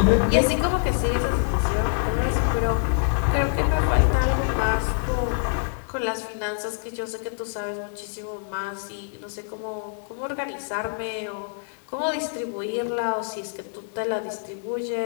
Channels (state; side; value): silent; right; digital silence